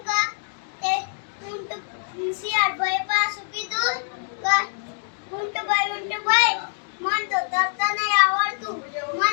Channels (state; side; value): silent; right; digital silence